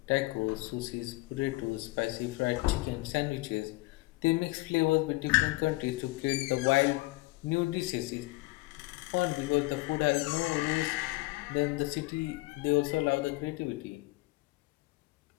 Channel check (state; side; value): quieter; right; 22.1 dB